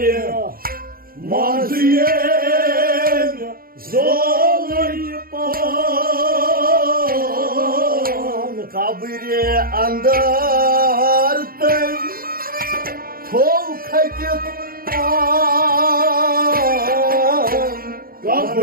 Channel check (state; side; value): late; left; 0.42 ms